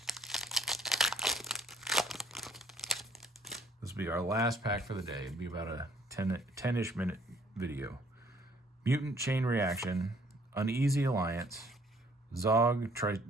This will be our last pack for the day. It'll be about a 10-ish minute video. Mutant Chain Reaction, Uneasy Alliance, Zog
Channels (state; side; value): normal; both; correlation 0.60